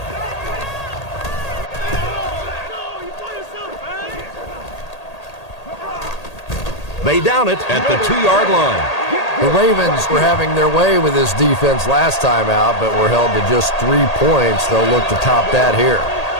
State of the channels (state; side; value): late; right; 1.8 ms